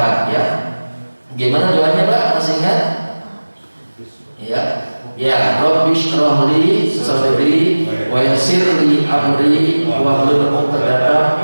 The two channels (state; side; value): inverted; both; correlation -1.00